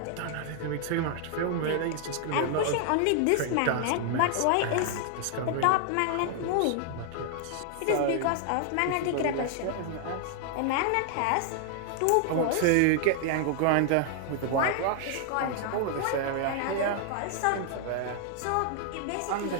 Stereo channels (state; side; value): different; both; correlation 0.00